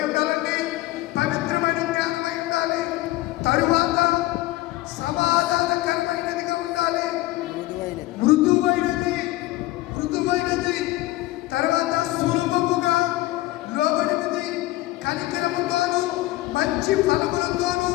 ఉండాలండి? పవిత్రమైన జ్ఞానమై ఉండాలి. తరువాత సమాధానకరమైనదిగా ఉండాలి, మృదువైనది. తర్వాత సులభముగా లోబడినది, కనికరముతోను మంచి ఫలములతోను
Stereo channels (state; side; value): quieter; right; 17.7 dB